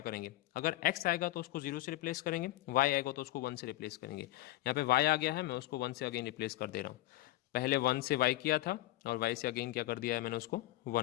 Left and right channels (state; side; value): quieter; right; 16.9 dB